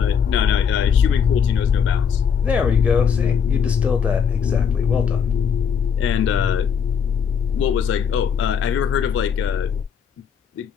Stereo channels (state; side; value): quieter; right; 7.1 dB